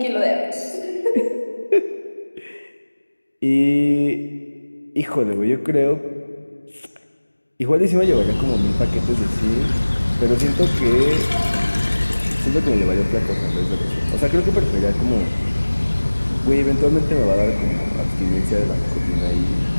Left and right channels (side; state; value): both; inverted; correlation -1.00